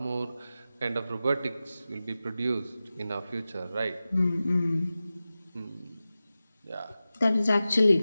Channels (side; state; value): both; inverted; correlation -0.95